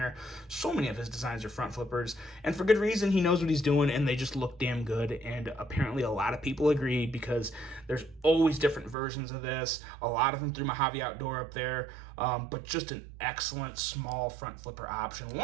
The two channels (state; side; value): drops out; left; at 9.0 s